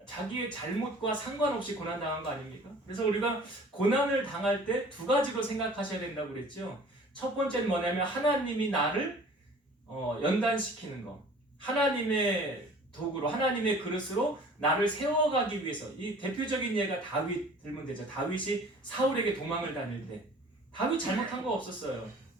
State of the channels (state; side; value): normal; both; correlation 0.48